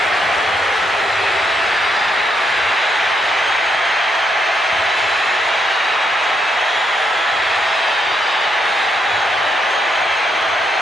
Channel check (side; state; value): both; normal; correlation 0.77